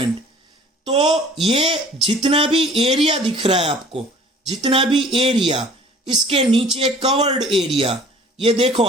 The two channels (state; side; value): normal; both; correlation 0.50